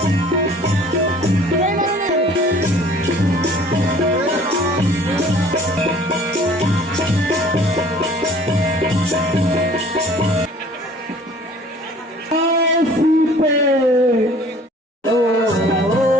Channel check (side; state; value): both; normal; correlation 0.51